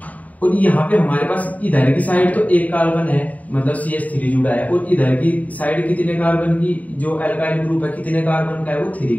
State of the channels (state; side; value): late; right; 0.073 ms